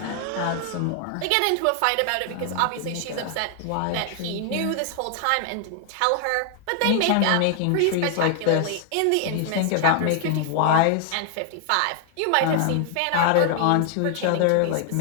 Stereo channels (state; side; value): different; both; correlation 0.00